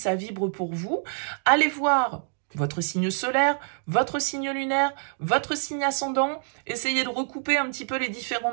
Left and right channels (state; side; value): silent; left; 61 dB below the other